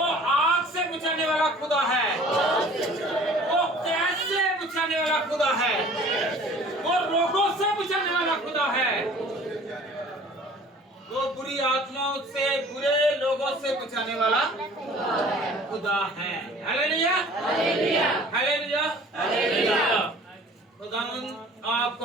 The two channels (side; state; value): both; normal; correlation 0.49